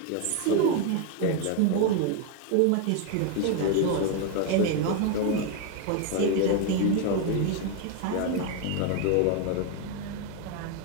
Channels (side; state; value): both; different; correlation 0.01